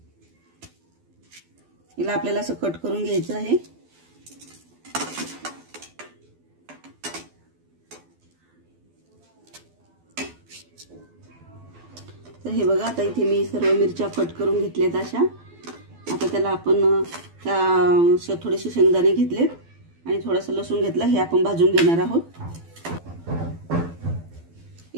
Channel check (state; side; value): late; left; 12 ms